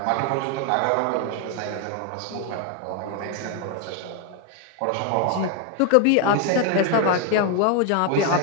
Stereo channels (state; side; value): different; both; correlation 0.01